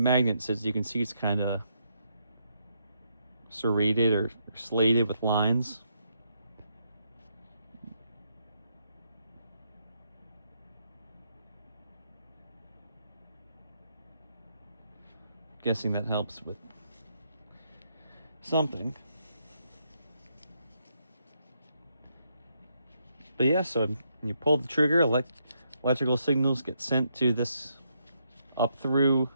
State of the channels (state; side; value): inverted; both; correlation -0.77